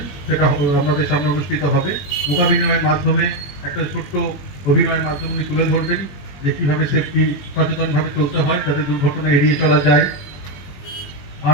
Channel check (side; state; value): right; late; 21 ms